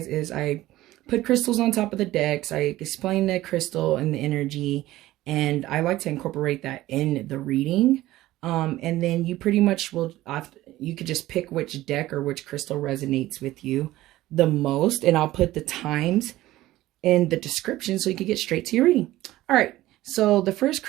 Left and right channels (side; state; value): left; quieter; 16.2 dB